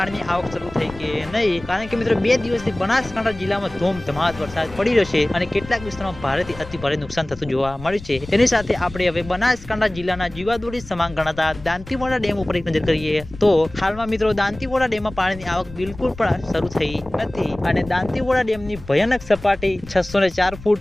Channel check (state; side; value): noise; left; rumble, 16 dB below the sound